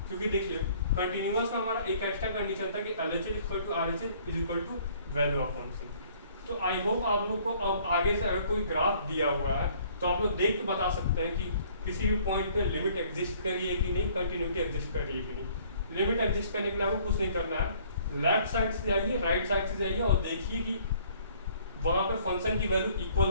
क्योंकि देखिए कंटिन्यूअस का हमारा एक एक्स्ट्रा कंडीशन था कि LHL equal to RHL is equal to value of function. तो आई होप आप लोग को अब आगे से अगर कोई ग्राफ दिया हुआ है तो आप लोग देख के बता सकते हैं कि किसी भी पॉइंट पे लिमिट एग्जिस्ट कर रही है कि नहीं, कंटिन्यूटी एग्जिस्ट कर रही है कि नहीं। लिमिट एग्जिस्ट करने के लिए आपको कुछ नहीं करना है, लेफ्ट साइड से जाइए, राइट साइड से जाइए और देखिए कि वहाँ पे फंक्शन की वैल्यू इक्वल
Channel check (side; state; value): both; inverted; correlation -0.58